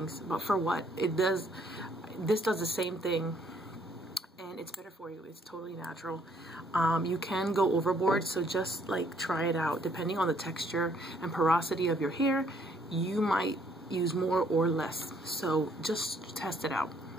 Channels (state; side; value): normal; both; correlation 0.66